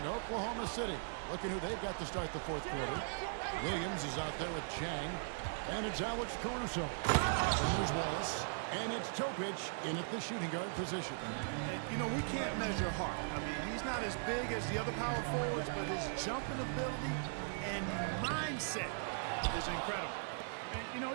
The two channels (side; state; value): left; silent; digital silence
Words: Oklahoma City looking who they've got to start the fourth quarter. Williams is out there with Chang. And it's Alex Caruso. And there's Wallace. And it's Topic in at the shooting guard position. And, you know, we can't measure Hart. I mean, he's not as big as the other power forwards, but his jumping ability and mindset is incredible. And, you know,